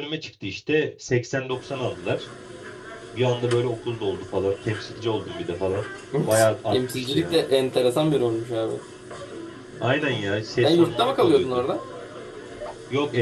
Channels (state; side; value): identical; both; correlation 1.00